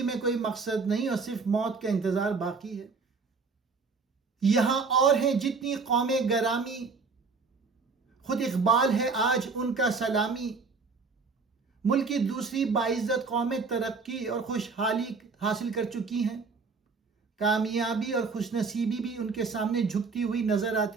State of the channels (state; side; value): quieter; left; 4.6 dB